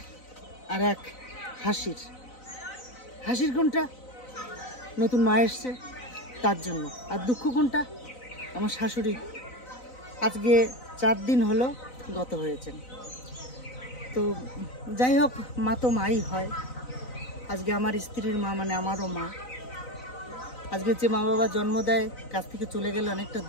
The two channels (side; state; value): right; late; 4.0 ms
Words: আর এক হাসির। হাসির কোনটা? নতুন মা এসছে তার জন্য। আর দুঃখ কোনটা? আমার শাশুড়ি আজকে 4 দিন হলো গত হয়েছেন। তো যাই হোক, মা তো মাই হয়। আজকে আমার স্ত্রীর মা মানে আমারও মা। আজকে যে মা বাবা জন্ম দেয় কাছ থেকে চলে গেলে অনেকটা